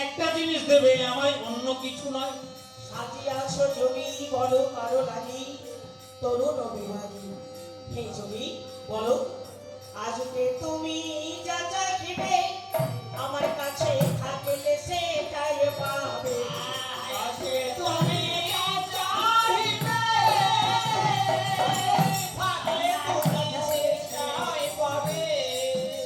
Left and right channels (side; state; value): both; identical; correlation 1.00